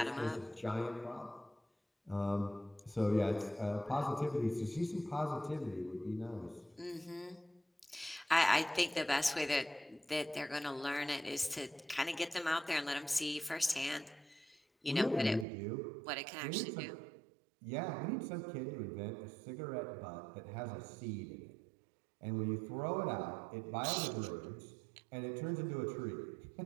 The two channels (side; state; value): left; drops out; at 15.5 s